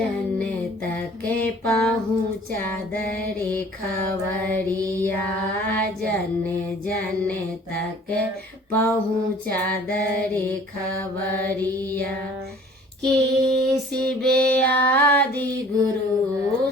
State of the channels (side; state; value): both; normal; correlation 0.51